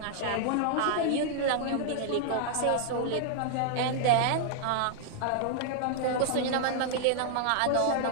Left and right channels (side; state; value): both; different; correlation -0.01